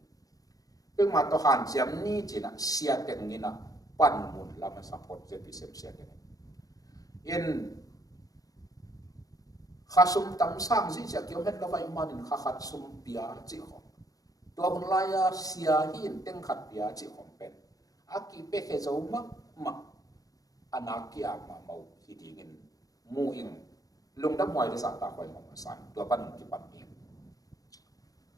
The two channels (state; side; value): late; right; 0.17 ms